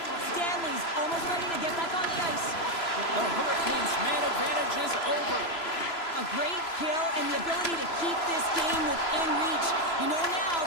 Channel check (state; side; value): late; right; 3.0 ms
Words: Stanley's almost ready to get back on the ice. The Hurricanes' man advantage is over. A great kill and the ability to keep this game within reach. You know now